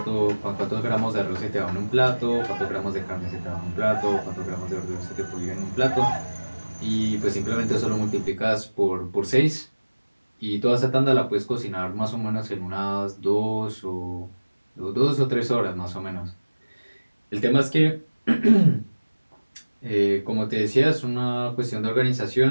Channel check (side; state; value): both; inverted; correlation -1.00